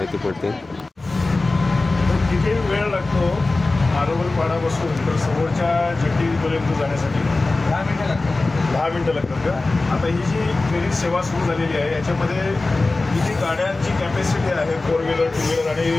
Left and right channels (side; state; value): right; quieter; 3.3 dB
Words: पडते. किती वेळ लागतो मारंबलपाडापासून तर समोरच्या जेटीपर्यंत जाण्यासाठी? 10 मिनटं लागतात का? आता ही जी फेरी सेवा सुरू झालेली आहे याच्यामध्ये किती गाड्यांची कॅपॅसिटी आहे? 4 व्हीलर 2 व्हीलर आणि